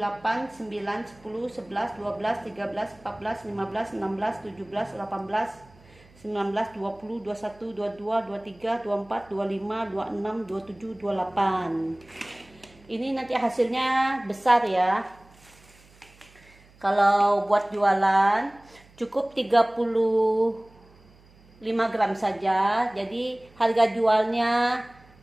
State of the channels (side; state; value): right; noise; hum, 27 dB below the sound